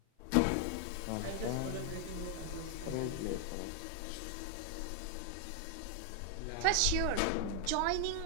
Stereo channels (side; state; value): both; different; correlation 0.00